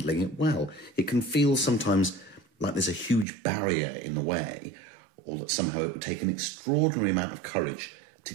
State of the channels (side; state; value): left; drops out; at 3.2 s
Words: it well. It can feel sometimes like there's a huge barrier in the way, or that somehow it would take an extraordinary amount of courage to